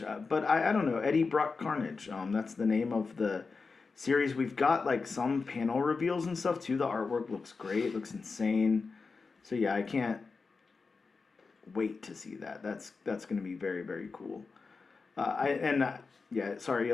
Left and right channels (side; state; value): right; quieter; 4.5 dB